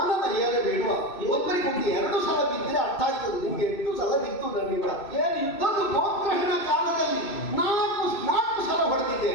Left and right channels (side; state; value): right; late; 2.6 ms